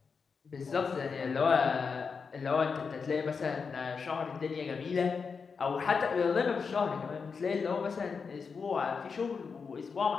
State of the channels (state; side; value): quieter; right; 5.4 dB